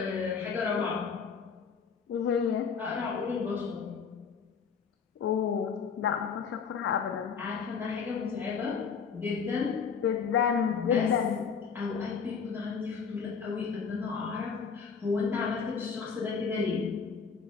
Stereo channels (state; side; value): quieter; right; 6.1 dB